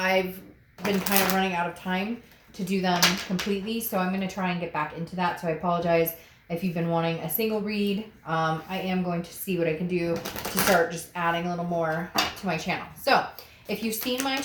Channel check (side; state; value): both; identical; correlation 1.00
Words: been kind of running out of time to do them completely, so I'm going to try and get back into that. So I apologize if you've been wanting a single read. I am going to see what I can do to start just adding a little more to my channel. So if you've seen my